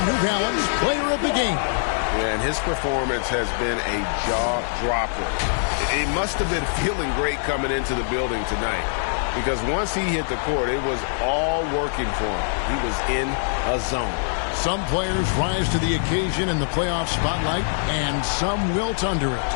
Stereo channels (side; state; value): right; silent; digital silence